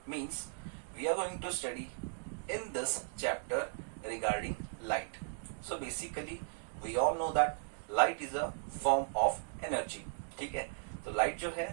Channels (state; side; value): silent; left; digital silence